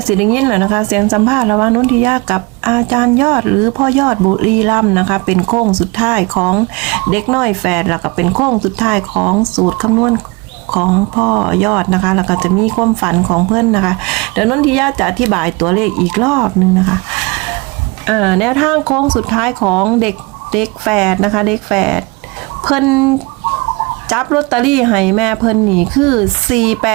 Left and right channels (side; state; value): left; quieter; 26.8 dB